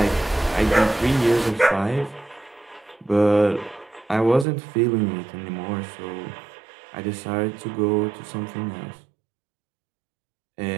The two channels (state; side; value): drops out; left; at 4.5 s